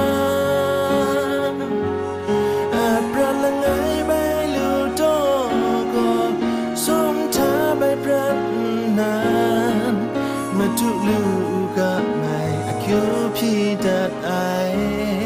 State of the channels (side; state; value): both; identical; correlation 1.00